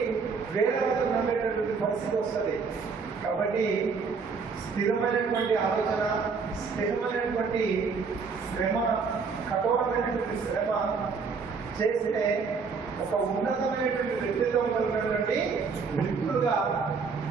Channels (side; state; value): left; quieter; 5.2 dB